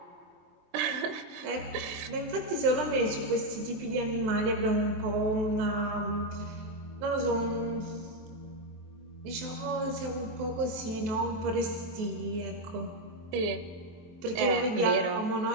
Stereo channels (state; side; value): late; left; 23 ms